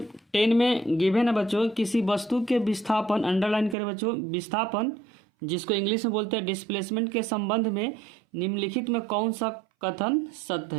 10 में गिवन है बच्चों किसी वस्तु के विस्थापन, अंडरलाइन करें बच्चों, विस्थापन जिसको इंग्लिश में बोलते हैं डिस्प्लेसमेंट के संबंध में निम्नलिखित में कौन सा कथन सत्य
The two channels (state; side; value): drops out; left; at 3.8 s